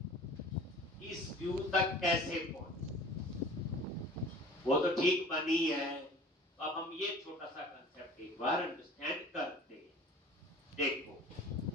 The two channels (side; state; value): both; normal; correlation 0.44